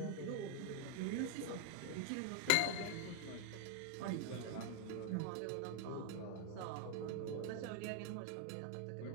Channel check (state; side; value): different; both; correlation 0.00